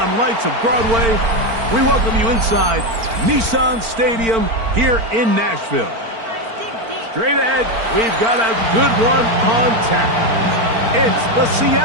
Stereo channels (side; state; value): left; late; 4.4 ms